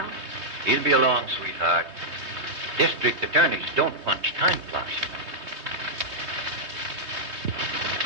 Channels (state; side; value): late; left; 3.2 ms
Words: He'll be along, sweetheart. District attorneys don't punch time clocks.